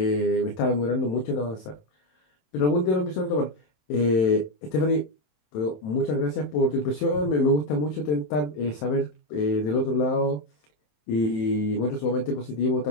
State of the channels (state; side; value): late; right; 27 ms